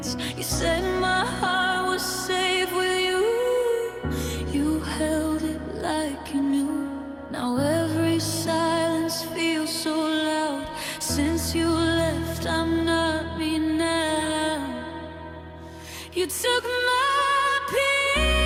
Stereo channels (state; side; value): identical; both; correlation 1.00